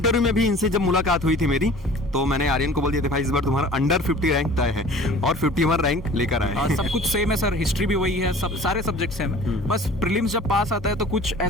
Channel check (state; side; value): normal; both; correlation 0.45